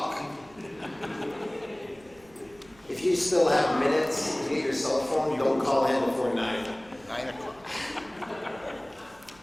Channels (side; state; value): right; noise; hum, 28 dB below the sound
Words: If you still have minutes to get your cell phone, don't call in before 9. 9 o'clock.